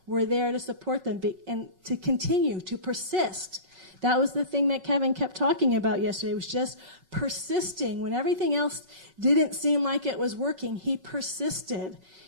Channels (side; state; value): left; late; 5.4 ms